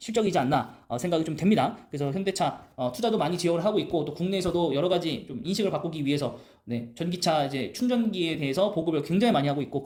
않나 생각이 좀 됩니다. 그래서 현대차 투자도 많이 지원을 하고 있고 또 국내에서도 여러 가지 좀 인식을 바꾸기 위해서 전기차 이제 충전기에 대해서 보급을 굉장히 많이 하고 있고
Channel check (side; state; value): both; identical; correlation 1.00